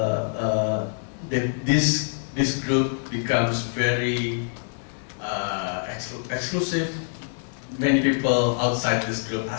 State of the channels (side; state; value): right; silent; digital silence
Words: This group becomes very exclusive. Many people outside this group